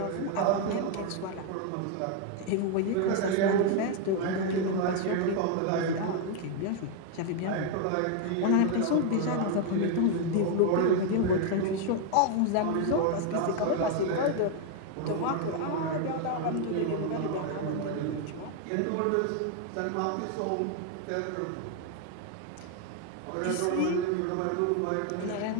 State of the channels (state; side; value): different; both; correlation 0.01